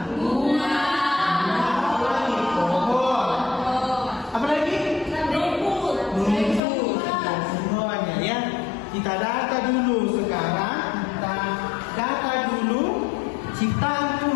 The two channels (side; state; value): right; drops out; at 6.6 s